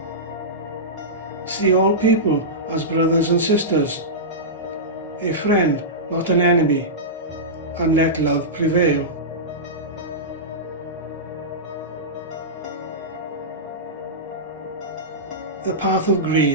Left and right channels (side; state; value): both; normal; correlation -0.15